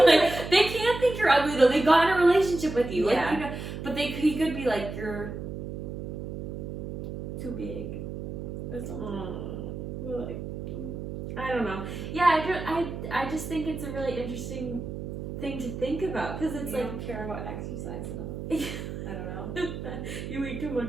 were I mean. like, they can't think you're ugly though. They got in a relationship with you. Yeah. Like, you know, but he could be like, you're too big or something. Like, I don't know. Yeah, I just think it's a really interesting thing to think about, because it's you like, don't care about exercise enough. I don't know. you eat too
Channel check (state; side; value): noise; right; hum, 7 dB below the sound